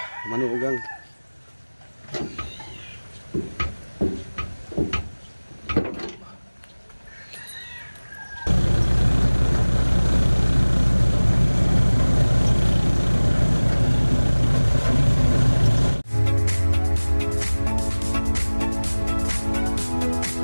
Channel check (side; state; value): both; inverted; correlation -1.00